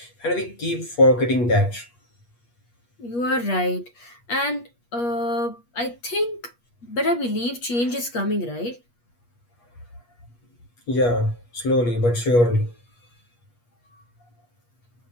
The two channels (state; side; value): late; right; 8.4 ms